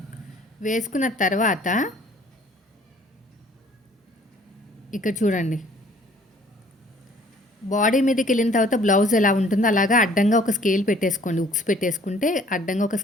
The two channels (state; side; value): normal; both; correlation 0.56